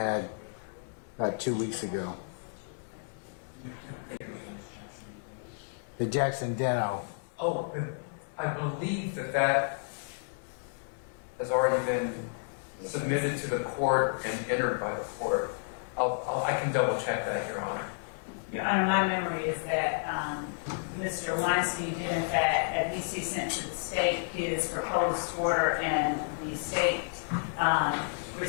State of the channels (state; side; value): silent; right; digital silence